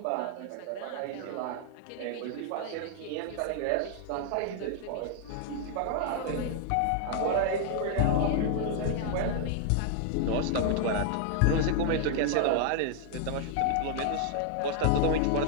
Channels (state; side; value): different; both; correlation 0.00